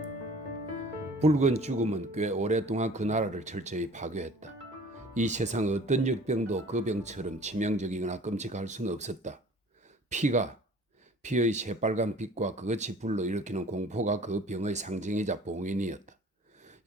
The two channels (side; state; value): both; normal; correlation 0.48